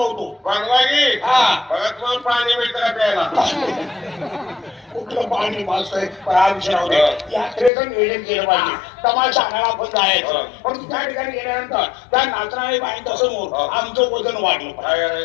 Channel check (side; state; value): right; drops out; at 7.7 s